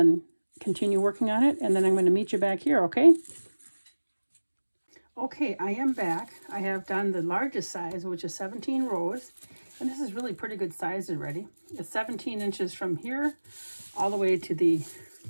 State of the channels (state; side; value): inverted; both; correlation -1.00